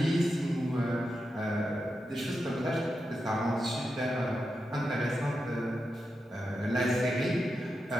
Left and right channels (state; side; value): normal; both; correlation 0.88